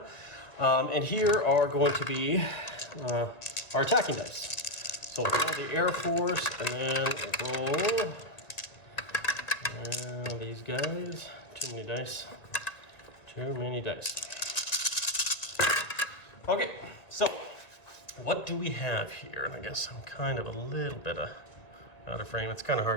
And here are going to be our attacking dice. So we'll roll the Air Force, and then we'll roll these guys. Too many dice. Too many dice. Okay, so what do we have here? And I guess I'm kind of a little bit out of frame. It's kind of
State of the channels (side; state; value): right; late; 1.9 ms